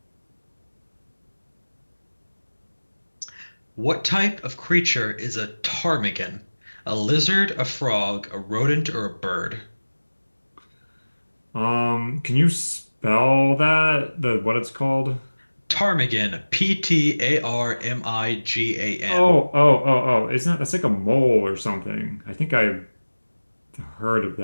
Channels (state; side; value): inverted; both; correlation -1.00